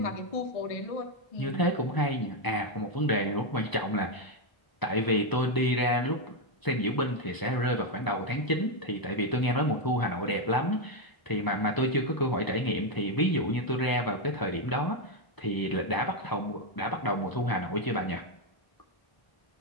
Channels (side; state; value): right; late; 1.0 ms